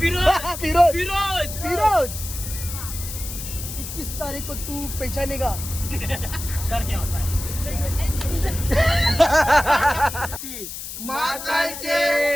फिरोज 21 तारीख को तू पहचानेगा. माताचे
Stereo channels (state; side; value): noise; left; hiss, 9 dB below the sound